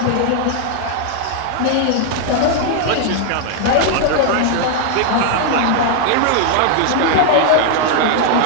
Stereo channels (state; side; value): different; both; correlation 0.00